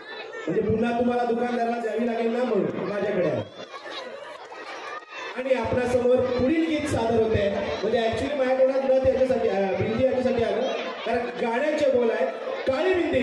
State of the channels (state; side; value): identical; both; correlation 1.00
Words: म्हणजे पुन्हा तुम्हाला दुकानदाराला द्यावी लागेल ना म्हणून माझ्याकडे आहे. आणि आपल्यासमोर पुढील गीत सादर होते, म्हणजे ऍक्च्युली माझ्याकडे नथ याच्यासाठी बिंदी याच्यासाठी आलं कारण गाण्याचे बोल आहेत काळी